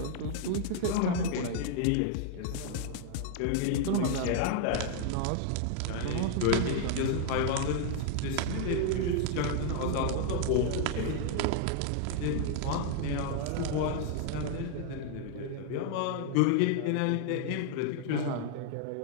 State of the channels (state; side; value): different; both; correlation 0.00